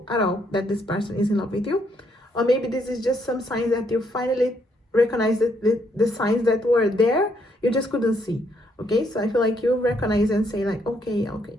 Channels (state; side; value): normal; both; correlation 0.72